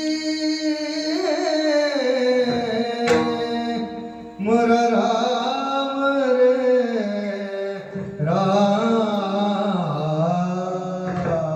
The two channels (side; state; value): both; identical; correlation 1.00